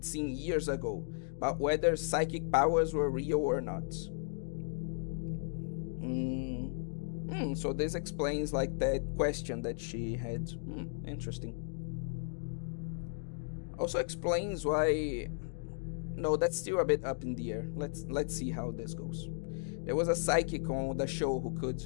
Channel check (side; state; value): right; silent; digital silence